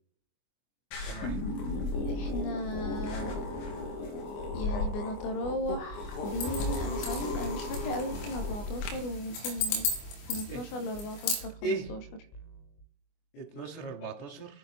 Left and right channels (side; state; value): right; late; 24 ms